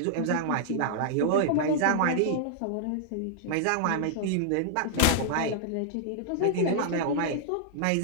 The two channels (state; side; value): different; both; correlation -0.01